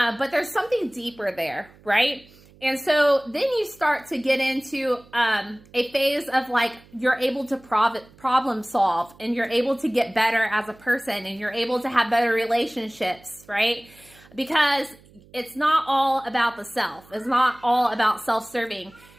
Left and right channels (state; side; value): noise; right; hum, 26 dB below the sound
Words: there's something deeper there, right? And so then you start to get into a phase of like, you're able to problem solve, and you're able to get better as a person, and you're able to have better relationships, right? Because it's not all about the self. It's not all about self-serving.